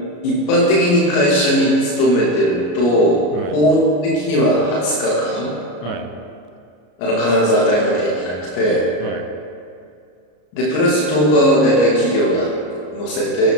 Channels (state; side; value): late; right; 33 ms